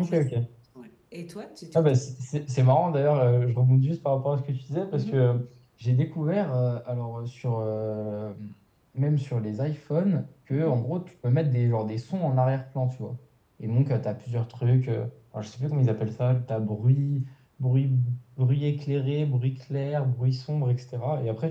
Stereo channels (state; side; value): identical; both; correlation 1.00